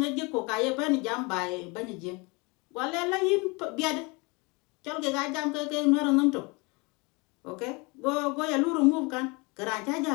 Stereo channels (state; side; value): quieter; right; 28.0 dB